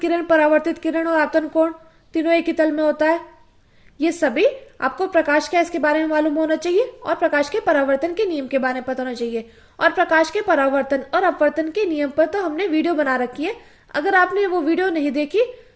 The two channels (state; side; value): identical; both; correlation 1.00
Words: परावर्तित किरण और आपतन कोण तीनों एक ही तल में होता है। ये सभी आपको प्रकाश क्या इसके बारे में मालूम होना चाहिए, और प्रकाश के परावर्तन के नियम के बारे में पता होना चाहिए। और प्रकाश के परावर्तन और अपवर्तन के नियम पर तो हमने वीडियो बना रखी है। अगर आपने वो वीडियो नहीं देखी